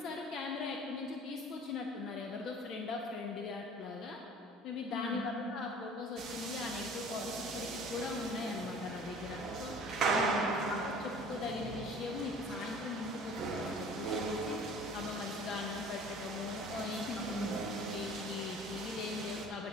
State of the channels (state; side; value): normal; both; correlation 0.47